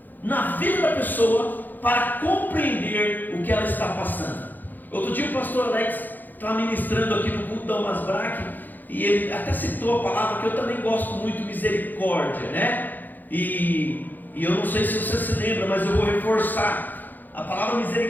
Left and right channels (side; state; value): right; late; 0.086 ms